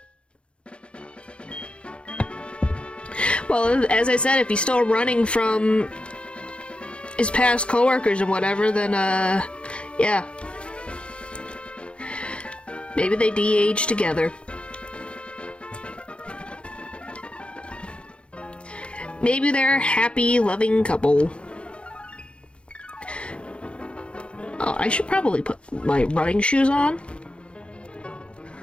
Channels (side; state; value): right; late; 0.058 ms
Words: Well, as I said, if he's still running from his past coworkers and whatever, then, yeah. Maybe they de-age together. Maybe they're a happy, loving couple. Oh, I should probably put my running shoes on.